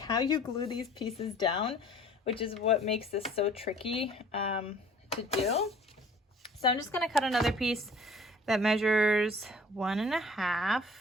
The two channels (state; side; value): normal; both; correlation 0.51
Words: you glue these pieces down, which is what makes this so tricky to do. So I'm just going to cut another piece that measures 1 1/2.